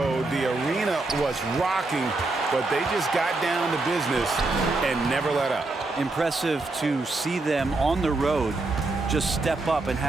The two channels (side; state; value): left; quieter; 3.3 dB